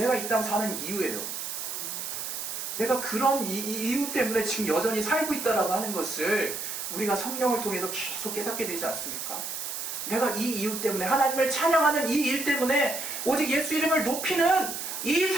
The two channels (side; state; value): right; noise; hiss, 5 dB below the sound